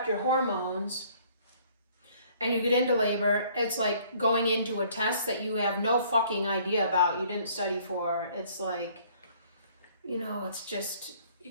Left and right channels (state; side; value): inverted; both; correlation -0.59